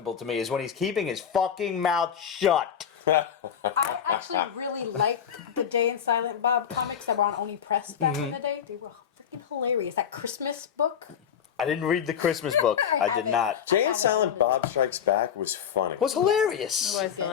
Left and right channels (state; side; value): quieter; right; 8.3 dB